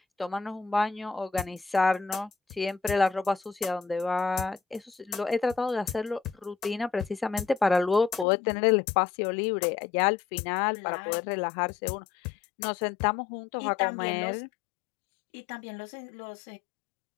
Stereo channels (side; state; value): right; drops out; at 8.2 s